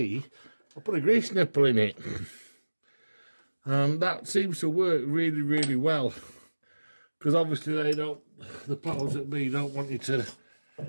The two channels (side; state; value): both; inverted; correlation -1.00